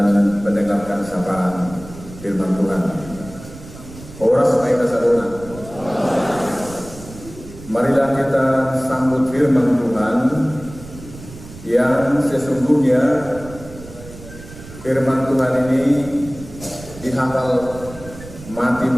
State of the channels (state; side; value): noise; right; rumble, 16 dB below the sound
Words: mendengarkan sapaan firman Tuhan. Horas Maita Sadona. Marilah kita sambut firman Tuhan yang sesungguhnya firman Tuhan ini dihafal mati